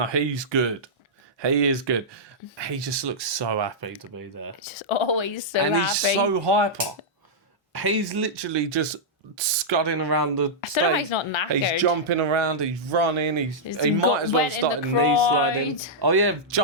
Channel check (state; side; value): normal; both; correlation -0.10